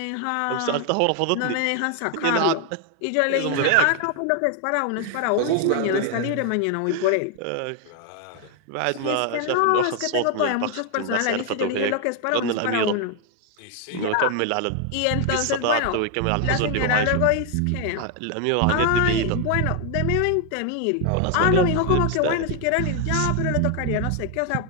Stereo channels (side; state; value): both; different; correlation 0.00